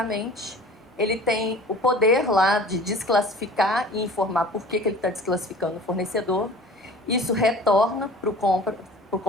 Ele tem o poder lá de desclassificar e informar por que ele está desclassificando o fornecedor. Isso retorna para o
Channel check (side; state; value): both; normal; correlation 0.44